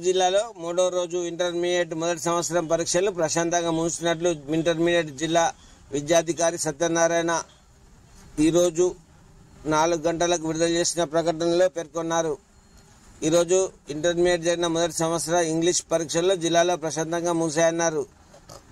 జిల్లాలో మూడో రోజు ఇంటర్మీడియట్ మొదటి సంవత్సరం పరీక్షలు ప్రశాంతంగా ముగిసినట్లు ఇంటర్మీడియట్ జిల్లా విద్యాధికారి సత్యనారాయణ ఈరోజు 4 గంటలకు విడుదల చేసిన ప్రకటనలో పేర్కొన్నారు. ఈరోజు ఇంటర్మీడియట్ జరిగిన మొదటి సంవత్సర ఇంగ్లీష్ పరీక్షల్లో జిల్లాలో ప్రశాంతంగా ముగిశాయన్నారు.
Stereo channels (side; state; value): both; identical; correlation 1.00